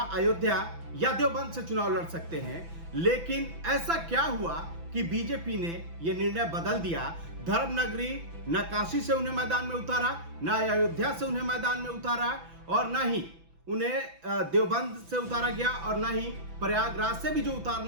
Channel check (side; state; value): left; late; 6.0 ms